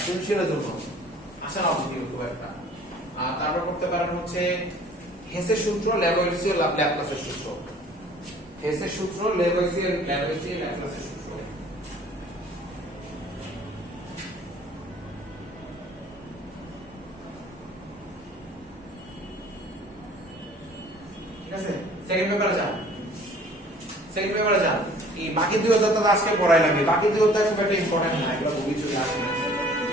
সৃজনশীলের জন্য আসে না অবধি খুব একটা। আর তারপর করতে পারেন হচ্ছে হেসের সূত্র, ল্যাভোইসিয়ার ল্যাপ্লাসের সূত্র, হেসের সূত্র, ল্যাভোইসিয়ার ল্যাপ্লাসের সূত্র। ঠিক আছে? সেকেন্ড পেপারে যান, সেকেন্ড পেপারে যান। এই বাকি দুই অধ্যায় তো আজকে পড়াই লাগবে, বাকি দুই অধ্যায় খুব একটা ইম্পর্টেন্ট না, এগুলো বই চলে আসে না।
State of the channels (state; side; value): normal; both; correlation 0.52